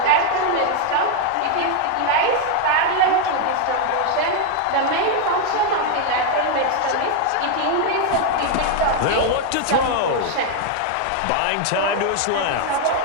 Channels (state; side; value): different; both; correlation 0.00